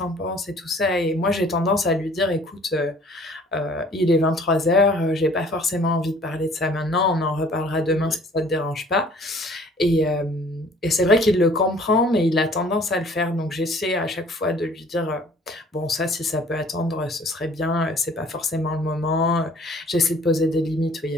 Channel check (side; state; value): both; normal; correlation 0.54